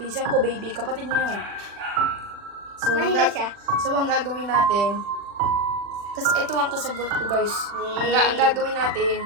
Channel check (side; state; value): left; late; 40 ms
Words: ko baby, kapatid niya yan. So, Mahina siya. So, ang gagawin natin, kasi ito ang kasagot ko guys. Ang gagawin natin,